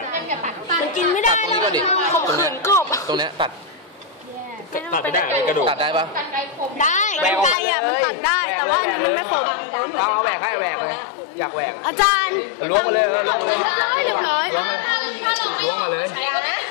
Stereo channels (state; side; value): drops out; right; at 7.6 s